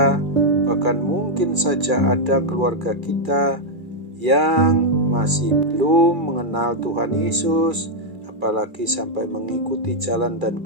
bahkan mungkin saja ada keluarga kita yang masih belum mengenal Tuhan Yesus, apalagi sampai mengikuti jalan dan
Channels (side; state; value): left; late; 2.4 ms